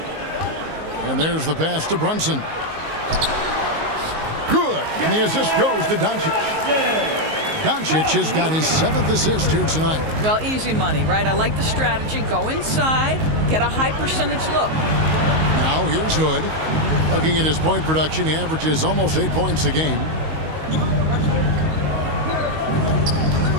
And there's the pass to Brunson. Good. And the assist goes to Doncic. Doncic has got his 7th assist here tonight. Well, easy money, right? I like the strategy. Go inside, get a high percentage look. Now here's Hood. Looking at his point production, he averages almost 8 points a game.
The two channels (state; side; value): late; left; 19 ms